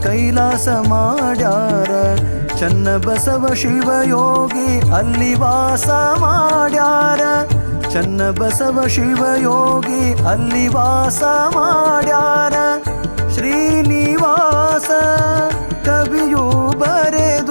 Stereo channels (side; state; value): both; inverted; correlation -1.00